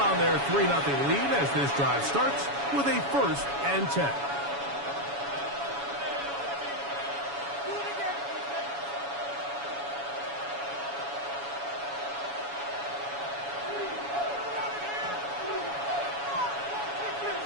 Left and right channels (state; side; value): late; left; 7.1 ms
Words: their 3-0 lead as this drive starts with a 1st and 10.